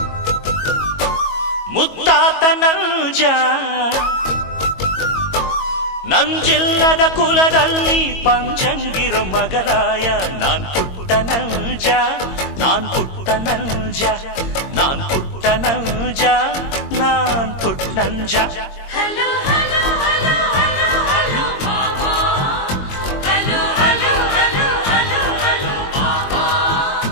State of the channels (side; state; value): right; late; 22 ms